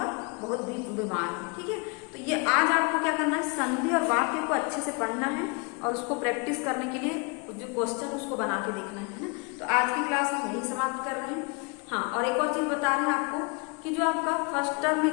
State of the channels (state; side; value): quieter; right; 32.1 dB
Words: बहुत बीमार है, ठीक है। तो ये आज आपको क्या करना है, संधि और वाक्य को अच्छे से पढ़ना है और उसको प्रैक्टिस करने के लिए जो क्वेश्चन उसको बना के देखना है ना। तो आज की क्लास हम यही समाप्त कर रहे हैं। हाँ, और एक और चीज बता रहे हैं आपको कि जो आपका फर्स्ट टर्म